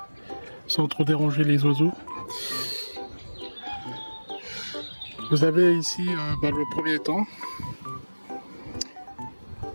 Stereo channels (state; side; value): inverted; both; correlation -1.00